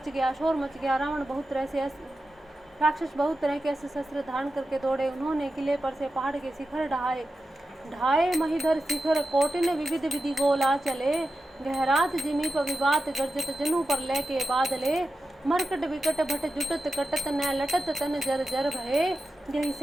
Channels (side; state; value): both; normal; correlation 0.91